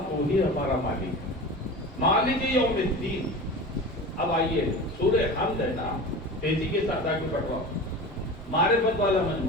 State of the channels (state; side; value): normal; both; correlation 0.32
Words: تو ہی ہمارا مالک، مالک یوم الدین۔ اب آئیے سورہ حمد ہے نا، تیزی کے ساتھ آگے بڑھواؤ، معرفت والا